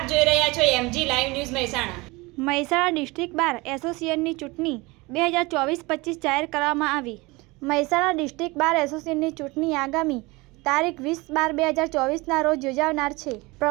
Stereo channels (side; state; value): left; quieter; 23.6 dB